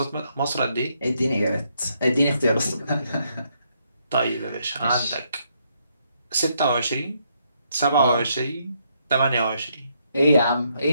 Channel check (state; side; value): inverted; both; correlation -0.75